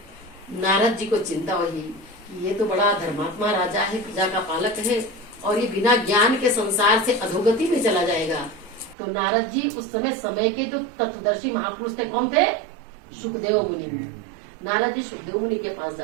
नारद जी को चिंता हुई, ये तो बड़ा धर्मात्मा राजा है, प्रजा का पालक है, और ये बिना ज्ञान के संसार से अधोगति में चला जाएगा। तो नारद जी उस समय के जो तत्वदर्शी महापुरुष थे, कौन थे? सुखदेव मुनि। नारद जी सुखदेव मुनि के पास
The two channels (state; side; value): drops out; left; at 9.0 s